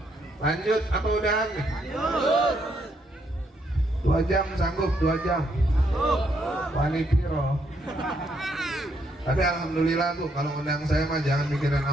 Lanjut apa udahan? 2 jam sanggup, 2 jam. Wani piro. Tapi alhamdulillah Bu, kalau undang saya mah jangan mikirin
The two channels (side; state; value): both; normal; correlation 0.74